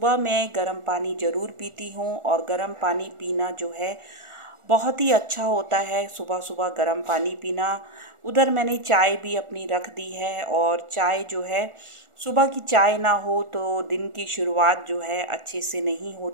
मैं गर्म पानी ज़रूर पीती हूँ और गर्म पानी पीना जो है बहुत ही अच्छा होता है। सुबह सुबह गर्म पानी पीना। उधर मैंने चाय भी अपनी रख दी है और चाय जो है, सुबह की चाय ना हो तो दिन की शुरुआत जो है अच्छे से नहीं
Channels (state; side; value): late; left; 1.4 ms